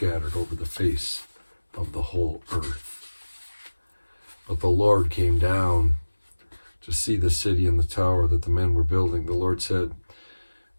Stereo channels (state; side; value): inverted; both; correlation -1.00